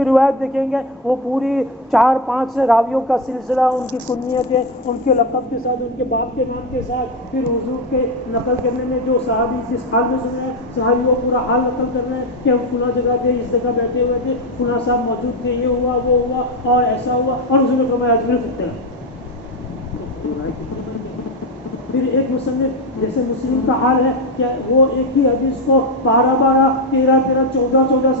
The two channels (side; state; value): both; normal; correlation 0.12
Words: روایت دیکھیں گے وہ پوری 4-5 راویوں کا سلسلہ، ان کی کنیتیں، ان کے لقب کے ساتھ، ان کے باپ کے نام کے ساتھ، پھر حضور کے نقل کرنے میں جو صحابی جس حال میں سن رہے ہیں، صحابی وہ پورا حال نقل کر رہے ہیں کہ ہم فلاں جگہ تھے، اس جگہ بیٹھے ہوئے تھے، فلاں صاحب موجود تھے، یہ ہوا، وہ ہوا، اور ایسا ہوا، اور حضور نے فرمایا اجمل فی الطلب۔ پھر ایک مصنف جیسے مسلم کا حال ہے کہ وہ ایک ہی حدیث کو 12 13 14